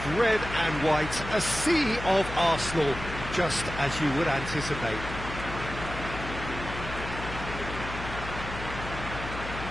red and white, a sea of Arsenal, just as you would anticipate.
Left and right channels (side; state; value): left; noise; hum, 9 dB below the sound